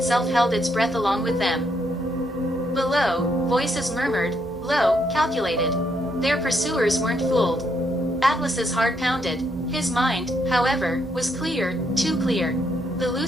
held its breath along with them. Below, voices murmured, low, calculated. Their pursuers weren't fooled. Atlas's heart pounded. His mind, however, was clear, too clear. The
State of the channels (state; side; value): normal; both; correlation 0.75